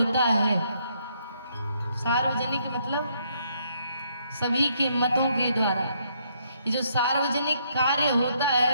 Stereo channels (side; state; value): both; inverted; correlation -0.72